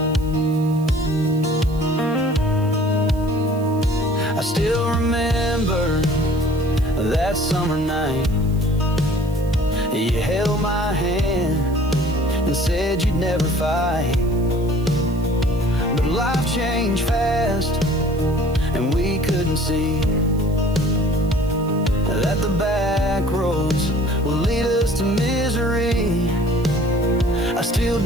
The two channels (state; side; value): noise; right; hiss, 23 dB below the sound